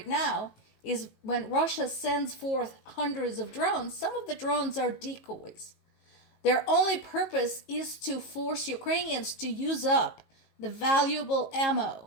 now is when Russia sends forth hundreds of drones, some of the drones are decoys. Their only purpose is to force Ukrainians to use up the valuable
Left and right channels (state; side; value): late; right; 19 ms